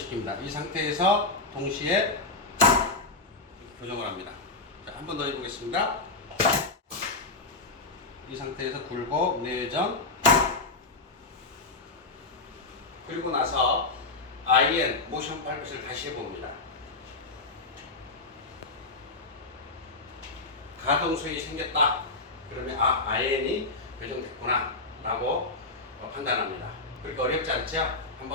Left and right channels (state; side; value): quieter; right; 3.3 dB